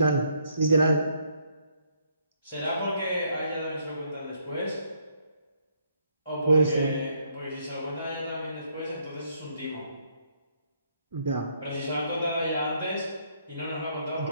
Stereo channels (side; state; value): both; inverted; correlation -0.70